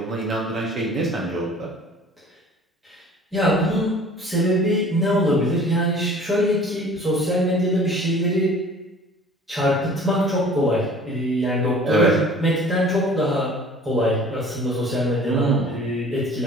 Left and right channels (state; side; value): normal; both; correlation 0.48